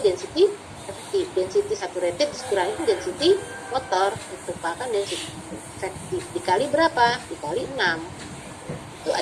density efektif. Density saturated dikurangin density water itu merupakan density efektif dikali berapa? Dikali 6. Itu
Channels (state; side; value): identical; both; correlation 1.00